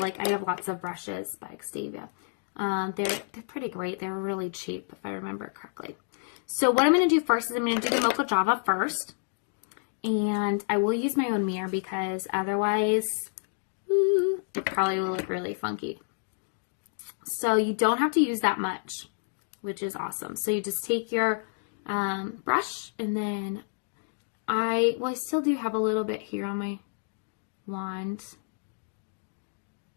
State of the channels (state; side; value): silent; right; digital silence